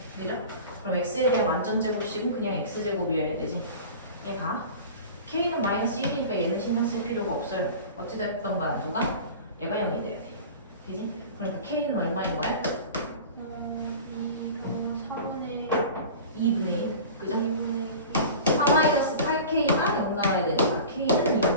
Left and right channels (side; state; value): both; inverted; correlation -0.37